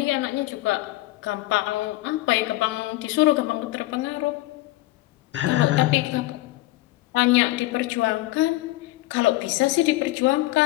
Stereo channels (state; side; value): quieter; right; 18.2 dB